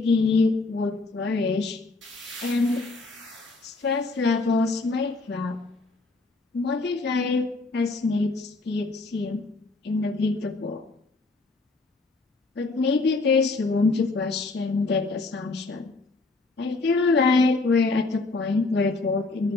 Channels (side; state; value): right; quieter; 3.5 dB